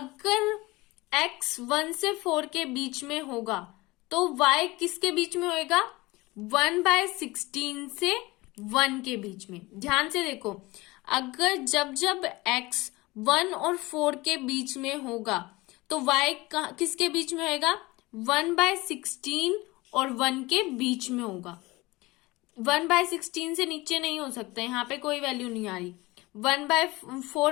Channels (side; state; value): right; quieter; 21.6 dB